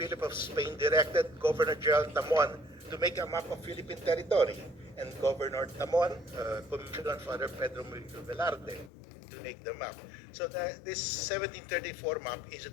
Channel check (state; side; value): drops out; right; at 8.9 s